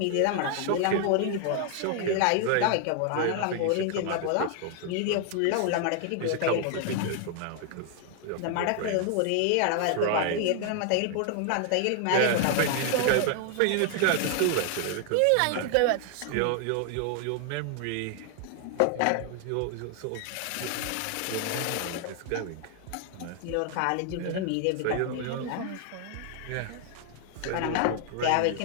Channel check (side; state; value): both; different; correlation 0.00